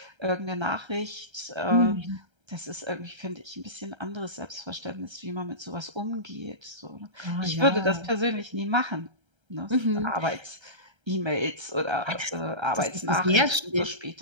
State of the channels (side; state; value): left; late; 1.3 ms